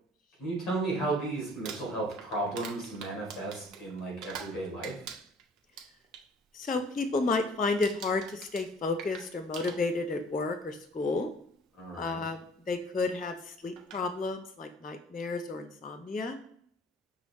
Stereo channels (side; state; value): both; normal; correlation 0.53